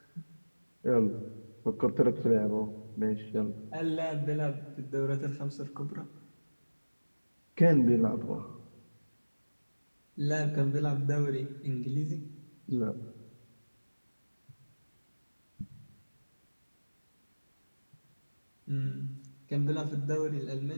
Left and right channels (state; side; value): inverted; both; correlation -1.00